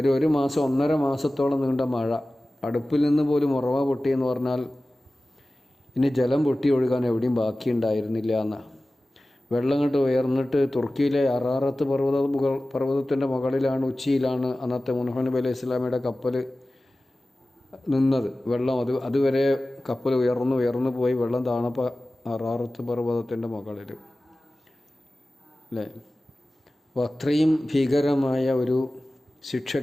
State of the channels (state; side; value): normal; both; correlation 0.96